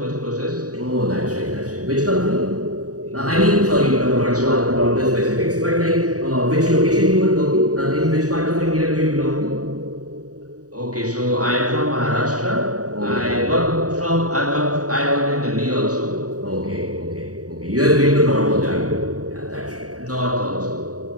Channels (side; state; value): left; late; 0.67 ms